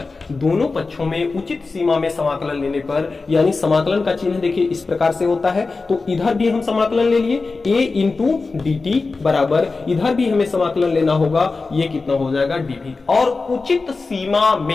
दोनों पक्षों में उचित सीमा में समाकलन लेने पर, यानी समाकलन का चिन्ह देखिए इस प्रकार से होता है। तो इधर भी हम समाकलन ले लिए, a इंटू dt बराबर, इधर भी हमें समाकलन लेना होगा, ये कितना हो जाएगा, dv। और उचित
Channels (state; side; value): quieter; right; 4.0 dB